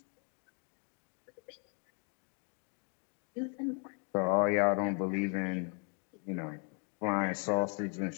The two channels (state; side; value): quieter; right; 39.4 dB